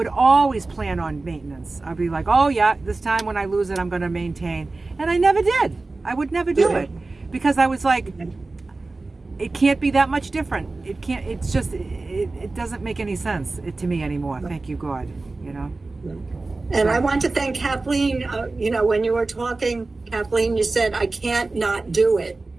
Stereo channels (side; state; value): left; quieter; 3.4 dB